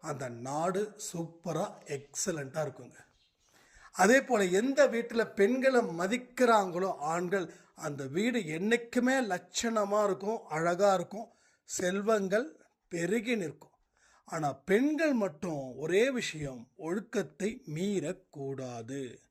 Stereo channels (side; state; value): both; identical; correlation 1.00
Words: அந்த நாடு சூப்பராக எக்ஸலண்ட்டாக இருக்குங்க. அதே போல் எந்த வீட்டில் பெண்களை மதிக்கிறாங்களோ ஆண்கள், அந்த வீடு என்றைக்குமே லட்சணமாக இருக்கும், அழகாக இருக்கும், செல்வங்கள் பெருகி நிற்கும். ஆனால் பெண்கள் மட்டும் ஒரே விஷயம், ஒழுக்கத்தை மீறக்கூடாது.